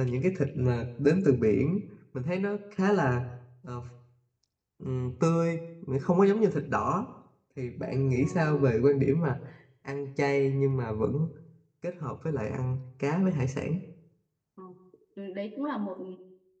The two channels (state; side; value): identical; both; correlation 1.00